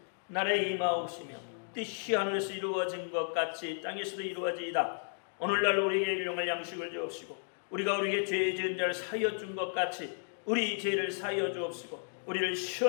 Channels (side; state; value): right; silent; digital silence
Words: 나라에 임하옵시며 뜻이 하늘에서 이루어진 것 같이 땅에서도 이루어지이다. 오늘날 우리에게 일용할 양식을 주옵시고, 우리가 우리에게 죄 지은 자를 사하여 준 것 같이 우리 죄를 사하여 주옵시고, 우리를